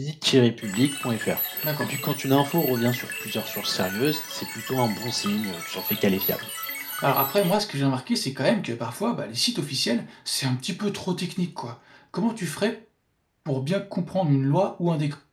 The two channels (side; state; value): both; identical; correlation 1.00